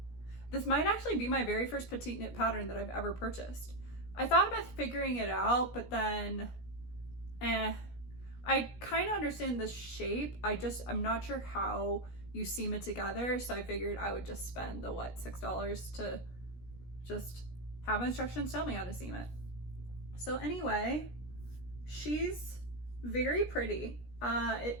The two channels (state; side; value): late; right; 17 ms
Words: This might actually be my very first Petite Knit pattern that I've ever purchased. I thought about figuring it out, but then, I kind of understand the shape. I'm not sure how you seam it together. So I figured I would just spend the, $6 to just have instructions tell me how to seam it. So anyway, she's very pretty. It